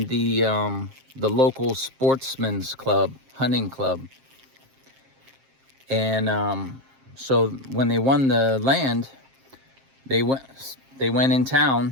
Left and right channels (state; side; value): late; left; 7.5 ms